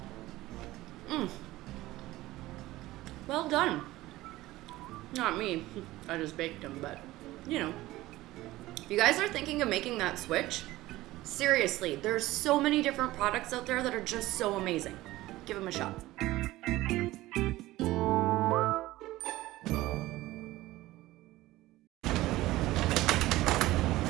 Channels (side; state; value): left; quieter; 17.3 dB